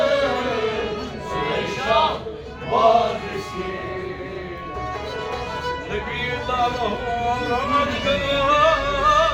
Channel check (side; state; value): both; identical; correlation 1.00